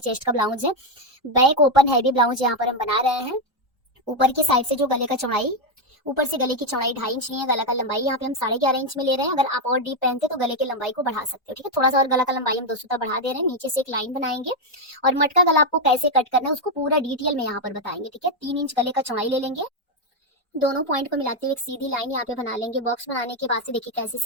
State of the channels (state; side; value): normal; both; correlation 0.04